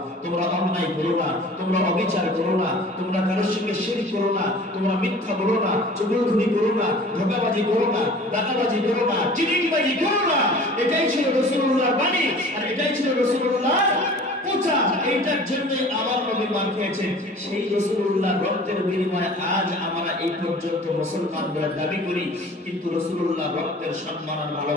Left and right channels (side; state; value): both; normal; correlation 0.45